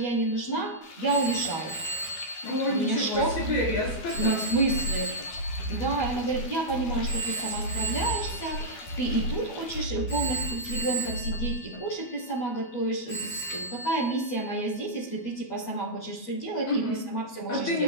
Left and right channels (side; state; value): right; late; 12 ms